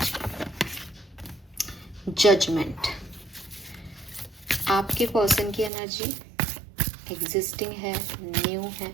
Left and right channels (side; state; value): left; drops out; at 5.7 s